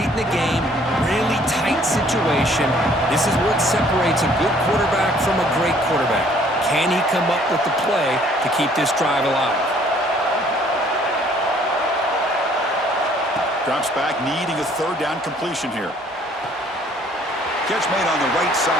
in the game, really tight situation. This is what separates a good quarterback from a great quarterback. Can he come up with the play to keep this drive alive? Drops back, needing a 3rd down completion here. Catch made on the right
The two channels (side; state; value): both; normal; correlation 0.60